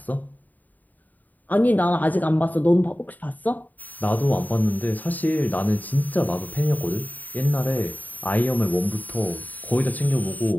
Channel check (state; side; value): late; right; 0.082 ms